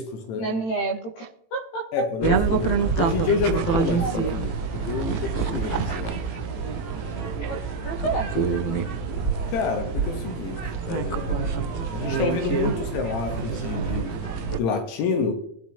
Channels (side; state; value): right; late; 18 ms